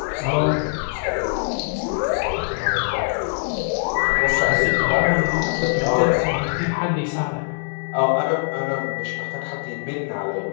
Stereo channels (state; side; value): silent; right; digital silence